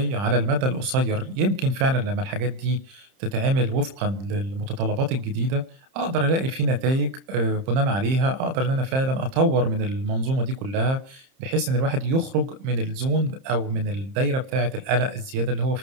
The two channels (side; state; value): left; late; 30 ms